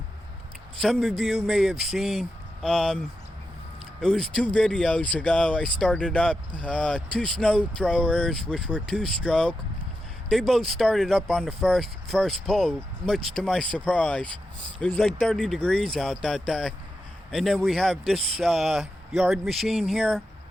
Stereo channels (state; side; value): normal; both; correlation 0.88